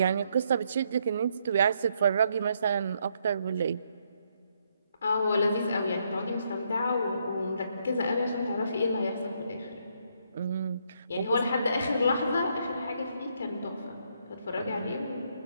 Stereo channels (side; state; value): both; inverted; correlation -0.74